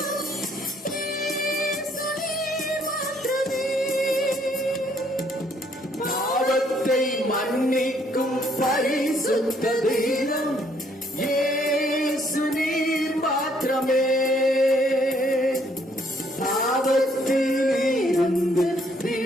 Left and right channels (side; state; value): both; normal; correlation 0.67